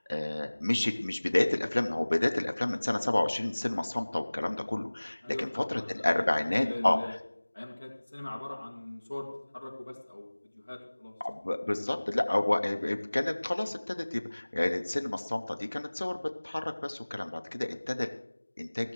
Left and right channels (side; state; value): both; inverted; correlation -1.00